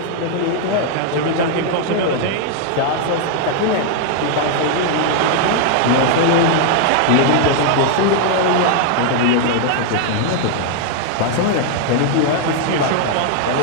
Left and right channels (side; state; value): both; different; correlation 0.00